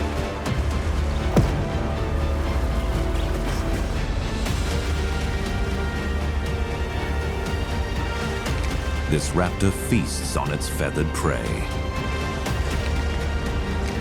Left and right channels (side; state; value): both; identical; correlation 1.00